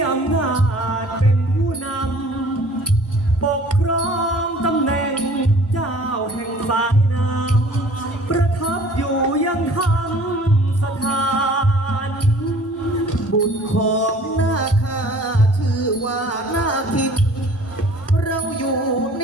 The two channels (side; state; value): both; normal; correlation 0.50